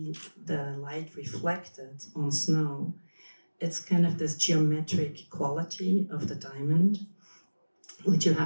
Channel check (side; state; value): both; inverted; correlation -1.00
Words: the light reflected on snow, it's kind of this geometric quality of the diamond, which you